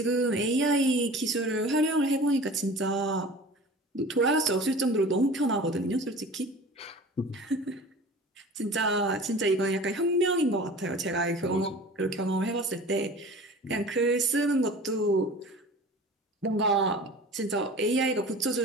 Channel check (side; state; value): both; normal; correlation 0.40